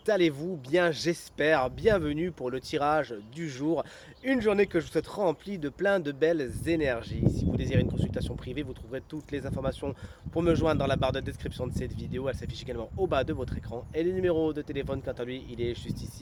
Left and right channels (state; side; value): identical; both; correlation 1.00